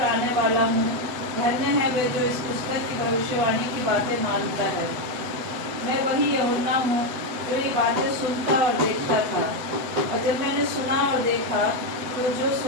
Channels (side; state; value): left; late; 8.0 ms